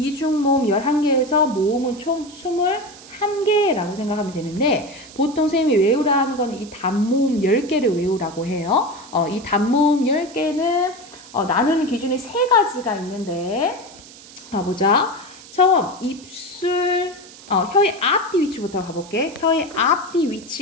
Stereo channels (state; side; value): noise; right; hiss, 19 dB below the sound